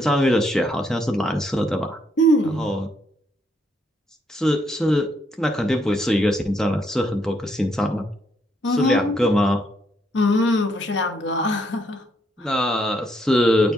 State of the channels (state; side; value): normal; both; correlation 0.74